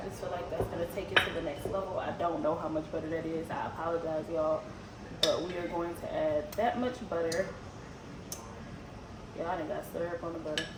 feel like that's going to take it to the next level. I don't know how much butter that is. I apologize, y'all. But we are going to add that much butter. Yeah, I done got syrup on the butter.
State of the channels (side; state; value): both; identical; correlation 1.00